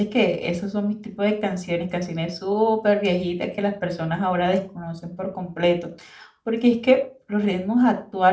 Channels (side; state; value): both; identical; correlation 1.00